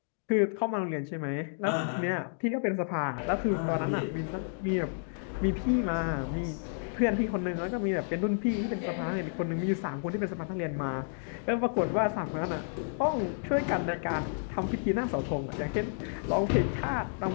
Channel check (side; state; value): right; silent; digital silence